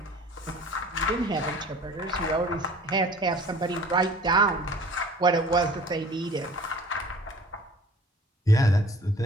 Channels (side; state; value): both; normal; correlation 0.48